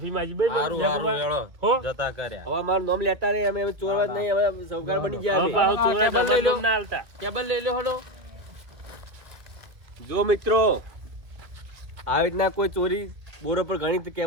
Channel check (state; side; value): late; left; 2.0 ms